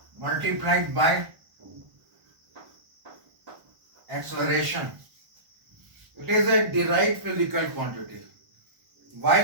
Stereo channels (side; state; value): left; late; 1.1 ms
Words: multiplied by acceleration. It is a derived physical quantity.